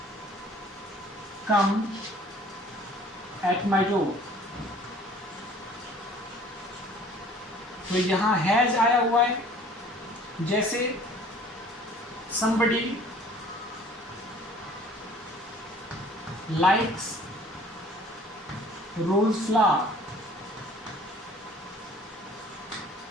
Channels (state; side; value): normal; both; correlation 0.52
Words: come at my door. तो यहां हैज आया हुआ है। जैसे somebody likes rose flower।